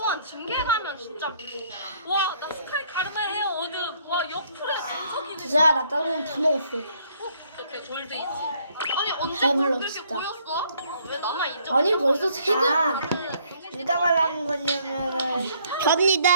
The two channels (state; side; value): inverted; both; correlation -0.65